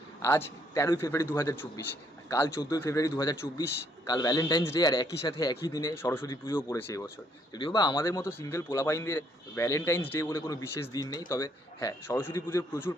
আজ 13ই ফেব্রুয়ারি 2024, কাল 14ই ফেব্রুয়ারি 2024, কাল ভ্যালেন্টাইন্স ডে। আর একই সাথে একই দিনে সরস্বতী পুজোও পড়েছে এবছর। যদিও বা আমাদের মতো সিঙ্গেল পোলাপাইনদের ভ্যালেন্টাইন্স ডে বলে কোনো বিশেষ দিন নেই, তবে হ্যাঁ, সরস্বতী পুজোর প্রচুর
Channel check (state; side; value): normal; both; correlation 0.69